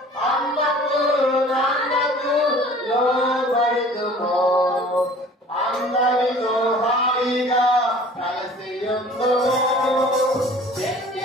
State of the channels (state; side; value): normal; both; correlation 0.47